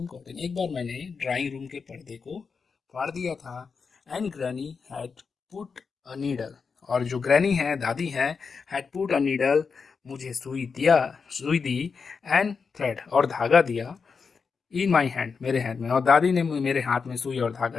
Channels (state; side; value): quieter; right; 5.3 dB